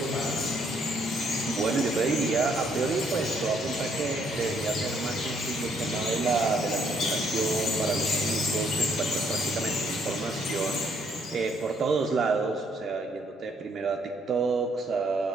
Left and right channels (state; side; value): normal; both; correlation 0.69